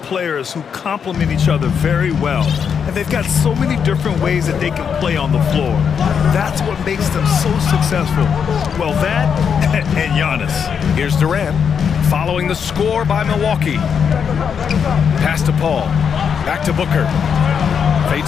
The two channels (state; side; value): quieter; right; 7.0 dB